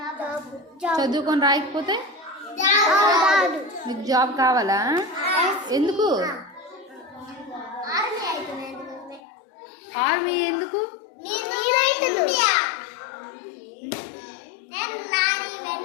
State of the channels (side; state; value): right; drops out; at 9.2 s